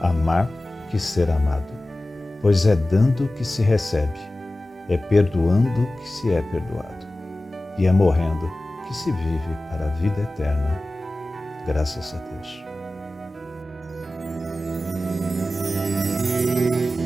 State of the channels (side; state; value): both; normal; correlation 0.96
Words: que ser amado, pois é dando que se recebe, é perdoando que se é perdoado, e é morrendo que se vive para a vida eterna. Graças a Deus.